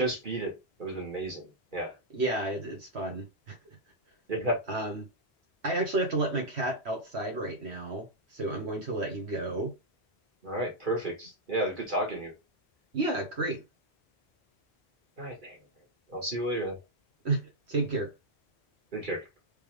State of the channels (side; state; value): both; normal; correlation -0.03